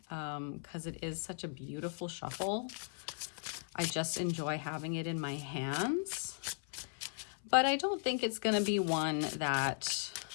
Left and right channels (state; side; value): silent; right; 53 dB below the other